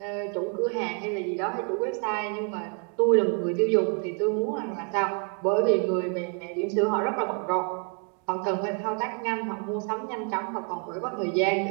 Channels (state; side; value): quieter; left; 39.0 dB